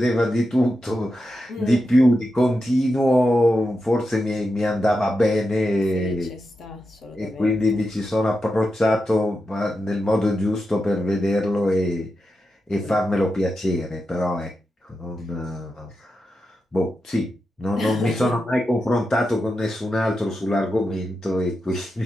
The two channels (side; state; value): both; normal; correlation 0.88